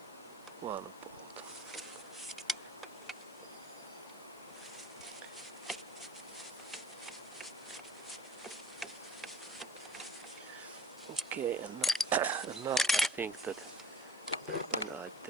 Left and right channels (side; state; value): left; noise; hiss, 25 dB below the sound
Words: one bolt. Okay, and now I think that when I